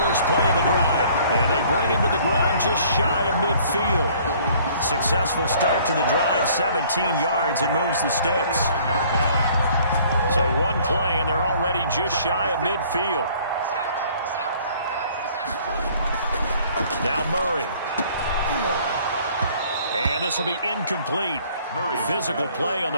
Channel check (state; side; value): inverted; both; correlation -0.57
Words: play of the drive. And they bring him to the ground just shy of midfield. Successful start to the drive, 17 yards, and moves the sticks. So 1 play, and they're already just shy of midfield. Now Murray. And this will be incomplete. Physical play on